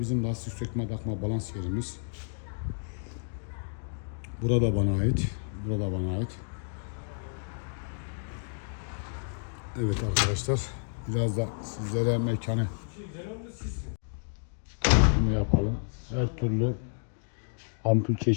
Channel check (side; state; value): right; silent; digital silence